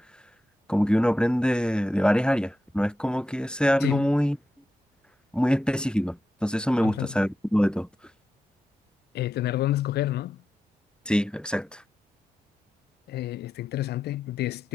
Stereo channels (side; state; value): both; normal; correlation 0.89